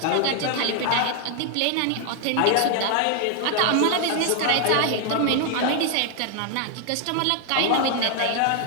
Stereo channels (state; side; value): different; both; correlation 0.00